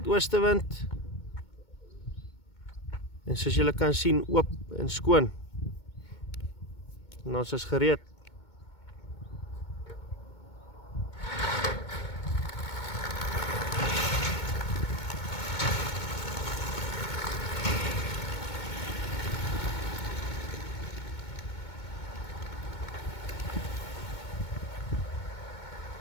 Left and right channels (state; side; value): late; right; 2.2 ms